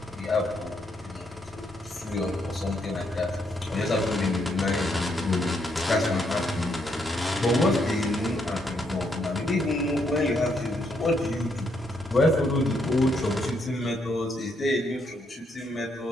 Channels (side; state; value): both; normal; correlation 0.75